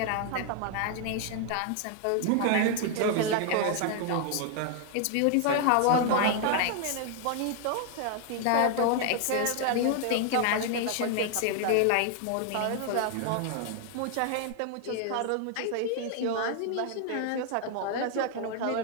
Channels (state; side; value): different; both; correlation 0.00